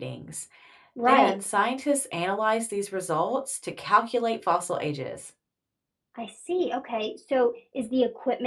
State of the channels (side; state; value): both; identical; correlation 1.00